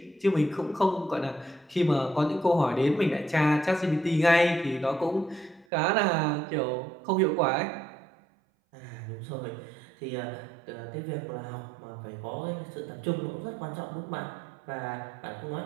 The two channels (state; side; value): drops out; left; at 5.7 s